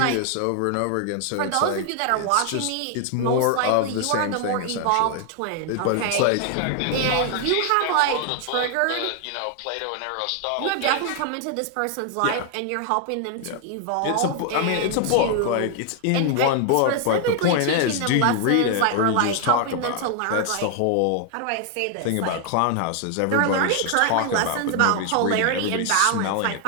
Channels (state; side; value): different; both; correlation 0.00